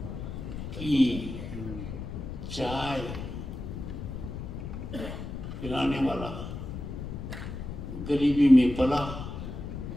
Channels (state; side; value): noise; left; rumble, 7 dB below the sound